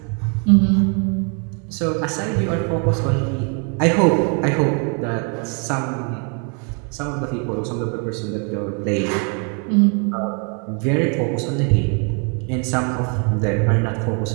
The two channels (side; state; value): left; quieter; 37.4 dB